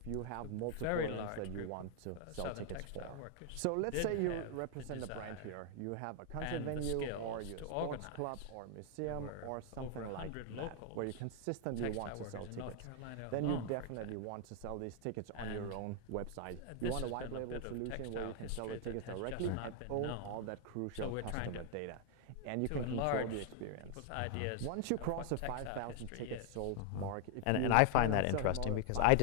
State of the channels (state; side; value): different; both; correlation 0.00